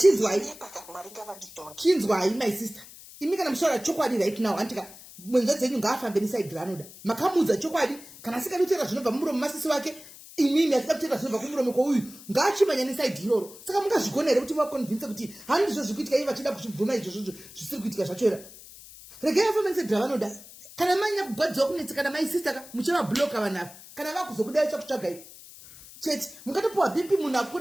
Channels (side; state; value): left; noise; hiss, 18 dB below the sound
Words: Chinzwai my sister. Imi kana mushora chokwadi right now antika mwenza dzenyu ngaafambe neside ranoda. Makamudza chokwadi kana sikadutera zvinobva mumuromo masisi wake imimi asida kutera zvinobva kumuromo kwouyu ngaachimanya neside iroro. Saka mungazvigona here kuti vakonvince kuti handizvo zvikuitika iye vachida kuchibvuma izvozvo zvisiri kuitika zvachora. Regai afambe neside ravanoda. Kana manya kugwadziwa kunetsa kana my sister muchavabloka vanhu kana vakuzokudai chakutsvagai. Cheti mukatopuwa BP munhu